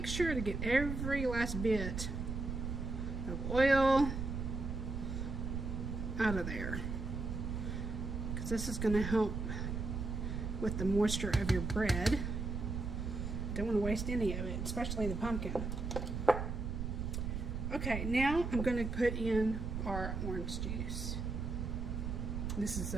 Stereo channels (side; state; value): right; noise; rumble, 3 dB below the sound